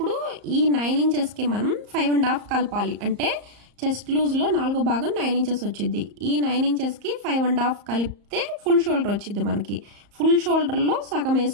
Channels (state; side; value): late; left; 34 ms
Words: ఈ 9 ఇంచెస్కి మనం 5.5 కలపాలి, అంటే చెస్ట్ లూజ్లో 4వ భాగం 9 ఇంచెస్ వచ్చింది. ఈ 9 ఇంచెస్కి 5.5 కలిపితే ఫుల్ షోల్డర్ వచ్చింది మనకి. ఫుల్ షోల్డర్లో సగం